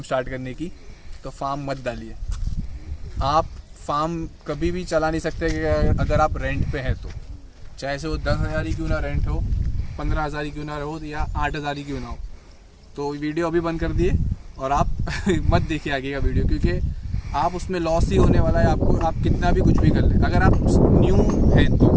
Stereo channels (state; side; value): identical; both; correlation 1.00